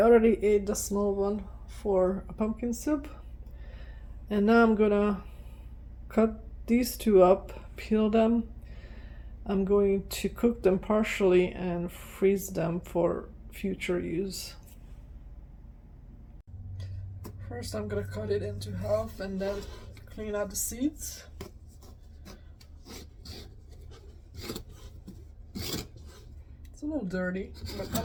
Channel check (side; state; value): both; identical; correlation 1.00